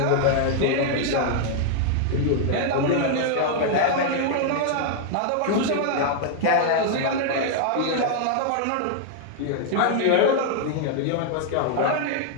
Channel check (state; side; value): different; both; correlation 0.00